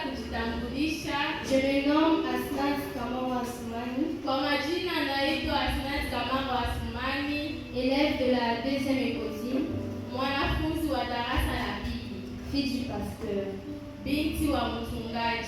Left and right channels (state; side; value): identical; both; correlation 1.00